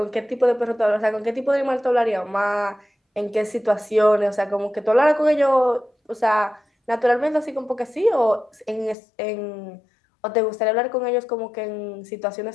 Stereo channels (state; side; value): drops out; right; at 9.0 s